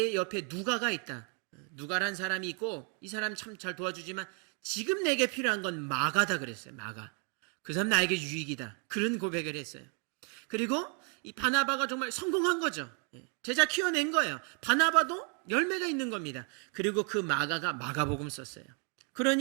옆에 누가가 있다. 누가란 사람이 있고 이 사람 참 잘 도와주지만 지금 내게 필요한 건 마가다 그랬어요. 마가. 그 사람 나에게 유익이다. 그런 고백을 했어요. 그리고 이 바나바가 정말 성공한 거죠. 제자 키워낸 거예요. 바나바도 열매가 있는 겁니다. 그리고 그 마가가 마가복음 썼어요.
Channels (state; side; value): quieter; left; 38.3 dB